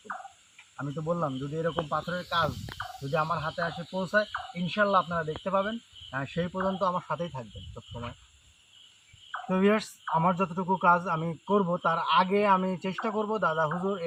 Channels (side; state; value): both; identical; correlation 1.00